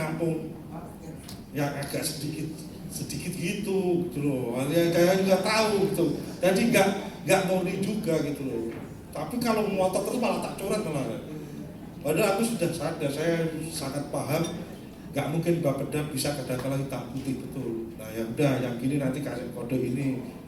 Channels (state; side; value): identical; both; correlation 1.00